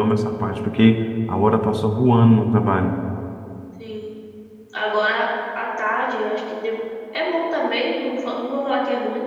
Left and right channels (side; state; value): both; identical; correlation 1.00